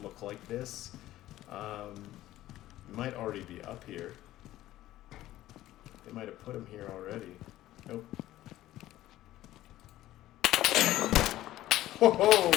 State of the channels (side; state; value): right; quieter; 14.8 dB